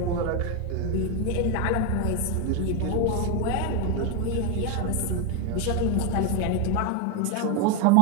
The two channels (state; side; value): different; both; correlation 0.02